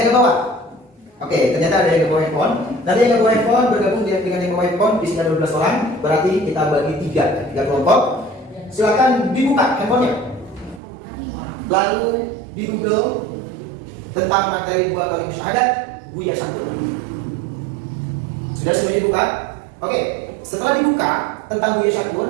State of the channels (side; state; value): left; drops out; at 10.8 s